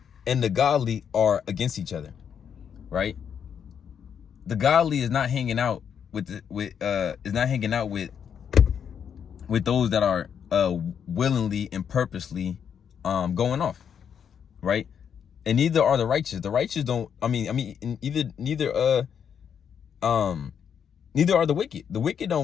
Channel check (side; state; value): right; quieter; 7.8 dB